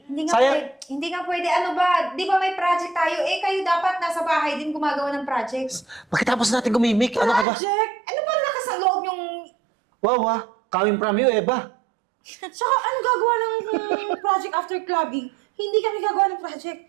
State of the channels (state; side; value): drops out; left; at 7.5 s